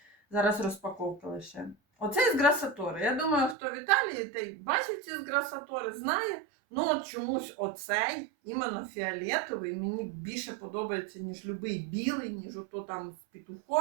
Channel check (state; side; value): drops out; left; at 3.6 s